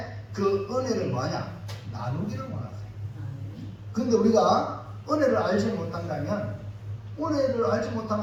그 은혜를 뭐하냐? 나누기를 원하세요. 그런데 우리가 은혜를 알지 못한다면, 은혜를 알지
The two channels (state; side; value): identical; both; correlation 1.00